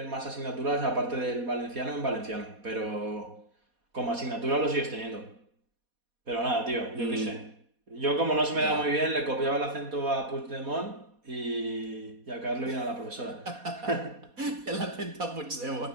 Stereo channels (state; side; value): late; left; 4.2 ms